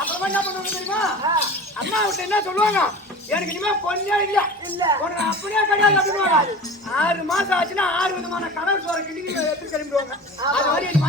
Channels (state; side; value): normal; both; correlation 0.36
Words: அப்புறமா என்ன பண்ணுவாங்க தெரியுமா? அம்மா விட்டு என்ன சொல்லுவாங்க? எனக்கு இனிமே பொண்ணே இல்ல உனக்கு அப்படியே கிடையாது அப்படின்னுவாங்க. 6 மாசம் ஆச்சுன்னா 6 விதமான கடல் சோற கிண்டி எடுத்து கிளம்பிடுவாங்க. அது மாதிரி